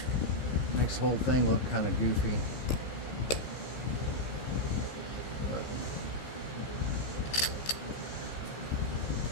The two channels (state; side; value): late; right; 15 ms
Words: makes the whole thing look kind of goofy. But